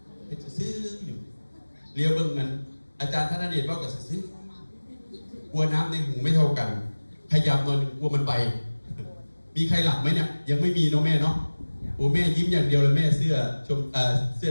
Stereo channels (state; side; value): inverted; both; correlation -1.00